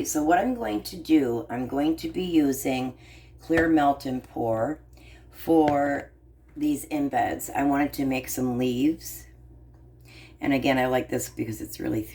so what I'm going to do, I'm going to be using Clear Melt and Pour for these embeds. I wanted to make some leaves. And again, I like this because it's really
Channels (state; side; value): identical; both; correlation 1.00